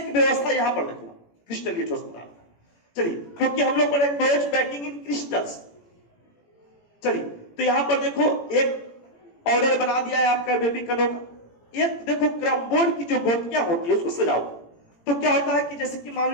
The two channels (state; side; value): late; right; 17 ms